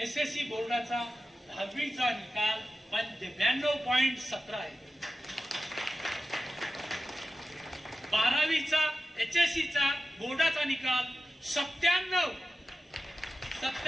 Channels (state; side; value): normal; both; correlation 0.93